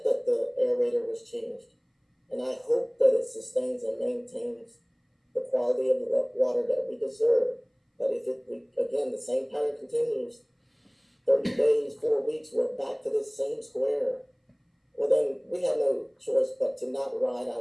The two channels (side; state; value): both; identical; correlation 1.00